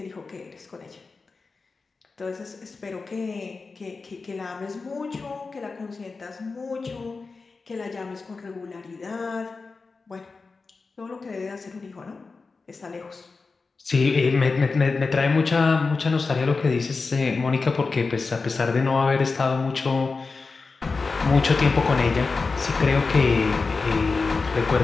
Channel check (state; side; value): quieter; right; 4.2 dB